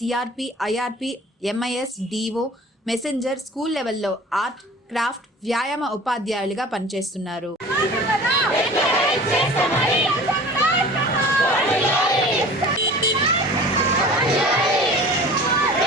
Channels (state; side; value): normal; both; correlation 0.42